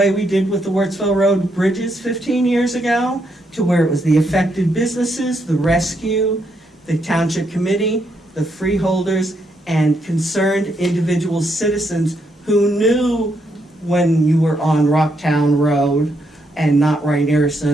we did with the Wurtsville Road bridges 15 years ago, to where it was the affected businesses, the rescue, the township committee, the freeholders, and concerned individual citizens who knew when you were on Rocktown Road and not Wright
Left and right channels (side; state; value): both; normal; correlation 0.77